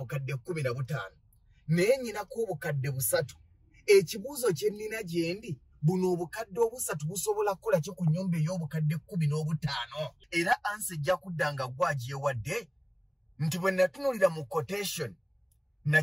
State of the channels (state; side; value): identical; both; correlation 1.00